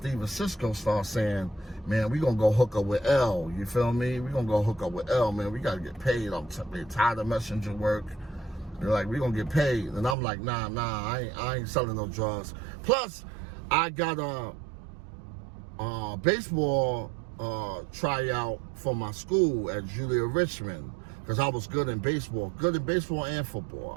and Cisco start saying, man, we gonna go hook up with L, you feel me? We gonna go hook up with L, man, we gotta get paid. I'm tired of messenger work. They're like, we gonna get paid. And I'm like, nah, I ain't selling no drugs. Plus, I got a baseball tryout for my school at Julia Richmond, because I was good in baseball and football.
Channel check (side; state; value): left; drops out; at 10.2 s